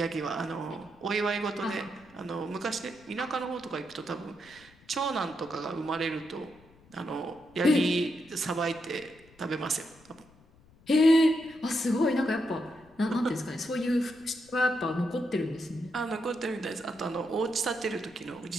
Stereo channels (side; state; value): left; noise; rumble, 27 dB below the sound